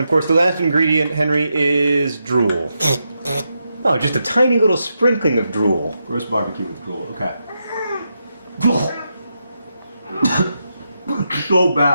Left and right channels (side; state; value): both; inverted; correlation -0.85